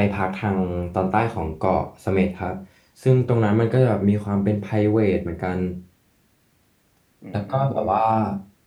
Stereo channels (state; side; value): identical; both; correlation 1.00